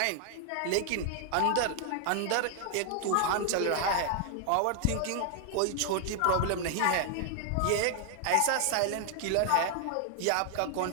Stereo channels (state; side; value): different; both; correlation 0.00